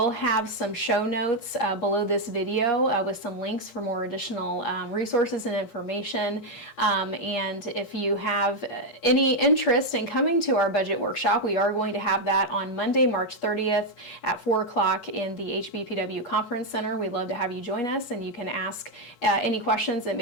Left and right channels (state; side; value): late; right; 8.4 ms